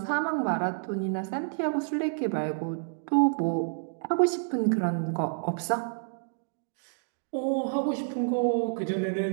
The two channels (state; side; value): silent; left; digital silence